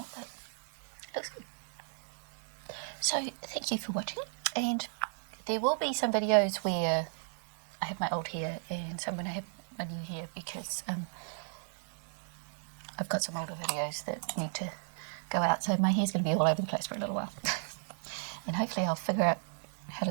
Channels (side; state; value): left; silent; digital silence